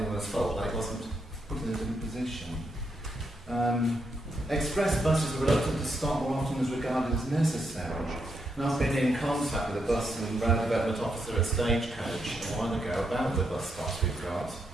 fault that it wasn't put in a different position. Express buses are reluctant to stop more often as regarded as necessary. And I've been in contact with a bus and road development officer at Stagecoach a while ago about the bus stops we've got.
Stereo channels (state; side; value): normal; both; correlation 0.80